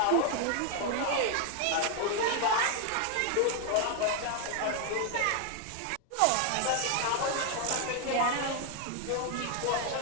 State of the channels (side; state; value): both; different; correlation 0.01